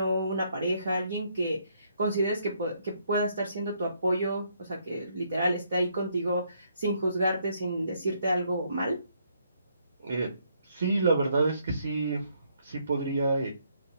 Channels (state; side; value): inverted; both; correlation -0.71